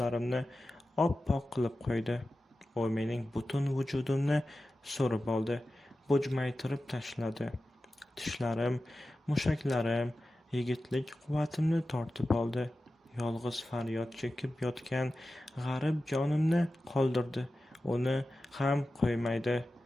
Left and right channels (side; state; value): both; normal; correlation 0.94